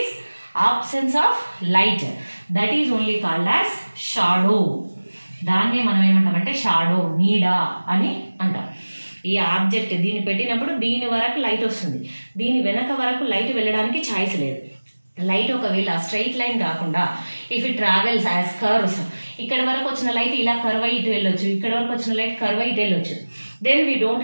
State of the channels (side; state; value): both; inverted; correlation -1.00